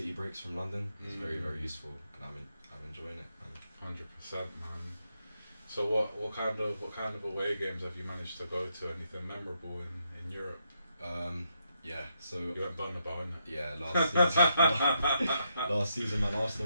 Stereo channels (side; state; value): both; inverted; correlation -0.80